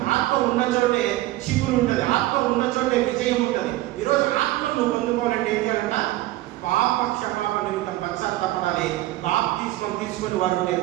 ఆత్మ ఉన్న చోటే చిగురు ఉంటుంది, ఆత్మ ఉన్న చోటే విజయం ఉంటుంది. ఈరోజు ఆత్మ నువ్వు పొందుకోవాలంటే ఏం చేయాలంట? పాప క్షమాపణ నిమిత్తం పశ్చాత్తాపడాలి. బాప్తిస్మం తీసుకొని వారు ఉంటే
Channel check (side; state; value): left; quieter; 16.7 dB